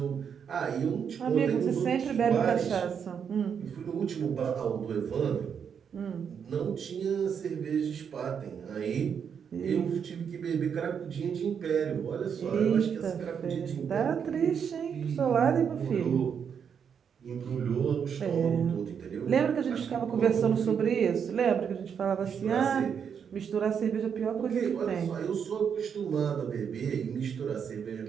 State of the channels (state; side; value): quieter; left; 7.3 dB